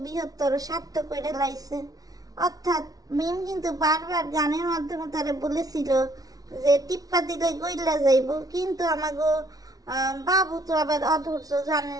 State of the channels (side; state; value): left; late; 0.18 ms